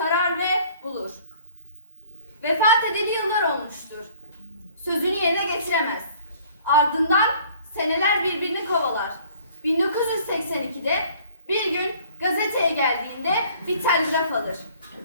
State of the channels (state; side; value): inverted; both; correlation -0.54